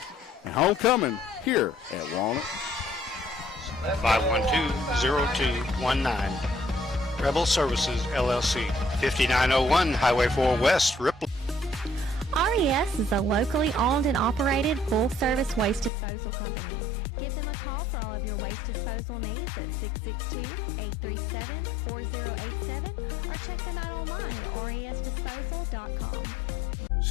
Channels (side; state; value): right; drops out; at 15.9 s